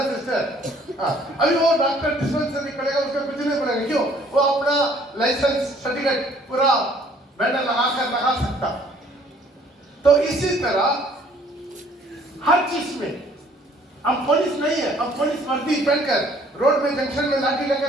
सिस्टर? हाँ, अभी वो डॉक्टर डिस्पेंसरी करेगा, उसका कुछ नहीं पड़ेगा। क्यों? वो अपना लाइसेंस सर्टिफिकेट पूरा बैनर लगा सकता। तो इसी तरह हर चीज में अब पुलिस नहीं है, अब पुलिस वर्दी पहनकर रोड में जंक्शन में लाठी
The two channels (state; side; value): normal; both; correlation 0.59